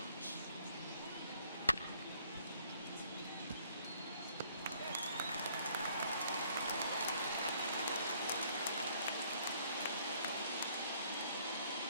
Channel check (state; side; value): inverted; both; correlation -0.63